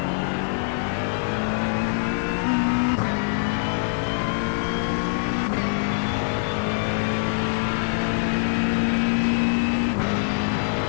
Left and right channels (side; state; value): right; silent; digital silence